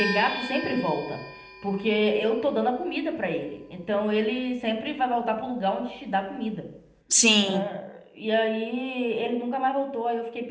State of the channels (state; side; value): identical; both; correlation 1.00